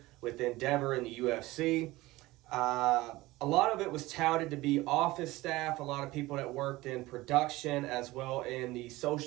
with Endeavor and the UFC. A lot of it was touted to be office staff, a lot of people that worked in production as well in the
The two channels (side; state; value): left; quieter; 19.1 dB